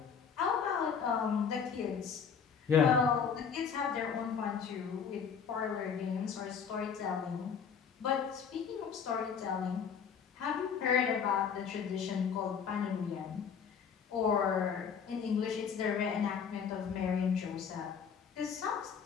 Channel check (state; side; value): quieter; right; 6.8 dB